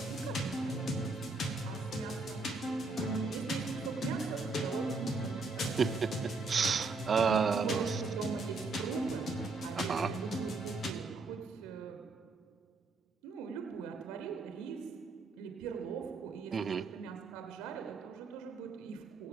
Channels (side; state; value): left; quieter; 3.7 dB